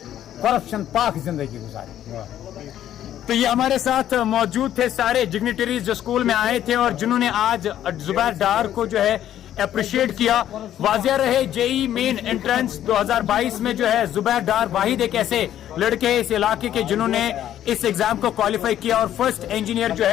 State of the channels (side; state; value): right; quieter; 11.4 dB